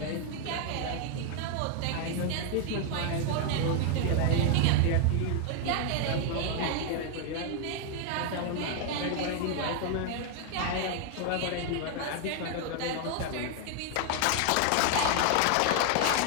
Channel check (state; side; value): different; both; correlation 0.00